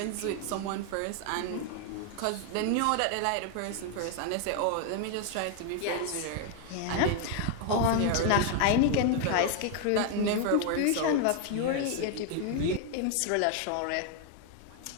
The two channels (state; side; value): different; both; correlation 0.00